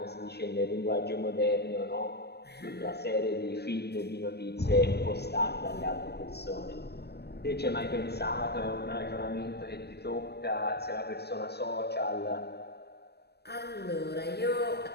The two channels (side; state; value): right; late; 0.47 ms